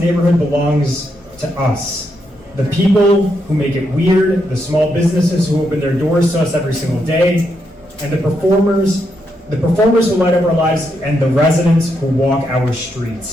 belongs to us. The people who make it weird, the small businesses who open their doors to us every single day, and the performers who light up our lives, and the residents who walk our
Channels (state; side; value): normal; both; correlation 0.80